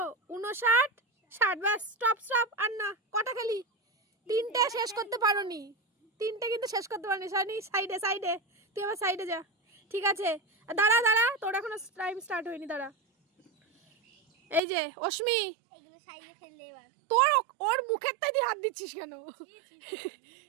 59, 60। ব্যাস, স্টপ স্টপ। আর না, কটা খেলি? 3টে শেষ করতে পারোনি, 3টে কিন্তু শেষ করতে পারোনি। সাইডে সাইডে, তুই আবার সাইডে যা, ঠিক আছে? দাঁড়া দাঁড়া, তোর এখনো টাইম স্টার্ট হয়নি, দাঁড়া। এই যে অশ্মি, তোর ওর মুখের তাই হাত দিচ্ছিস কেন?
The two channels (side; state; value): left; drops out; at 14.6 s